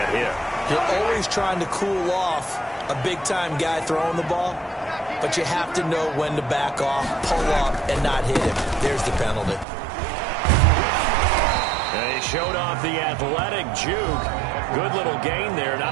hit. You're always trying to cool off a big-time guy throwing the ball, but you have to know when to back off, pull up, and not hit him. There's the penalty. And he showed off the athletic juke. Good little gain there.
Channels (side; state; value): left; drops out; at 9.7 s